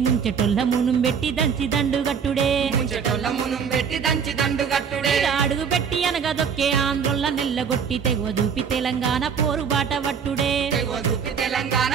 ముంచెటొల్ల మునుం పెట్టి దంచి దండుగట్టుడే ముంచెటొల్ల మునుం పెట్టి దంచి దండుగట్టుడే అడుగు పెట్టి అనగదొక్కే ఆంధ్రొల్ల నెల్లగొట్టి తెగువ చూపి తెలంగాణ పోరు బాట వట్టుడే తెగువ చూపి తెలంగాణ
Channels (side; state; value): left; quieter; 6.8 dB